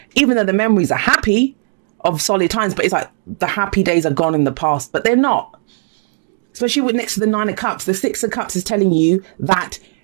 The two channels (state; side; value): silent; left; digital silence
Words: Even though the memories are happy of solid times, but it's like the happy days are gone in the past, but they're not. Especially with next to the Nine of Cups, the Six of Cups is telling you that